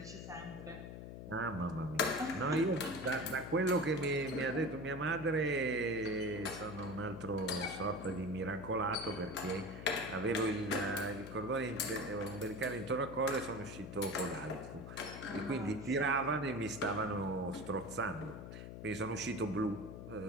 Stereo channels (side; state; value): left; noise; hum, 9 dB below the sound